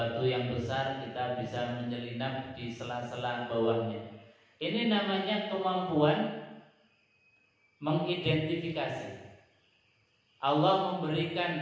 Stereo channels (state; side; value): identical; both; correlation 1.00